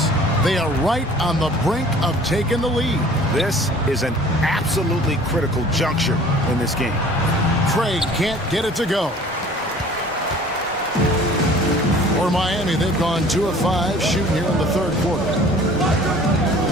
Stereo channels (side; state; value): both; normal; correlation 0.49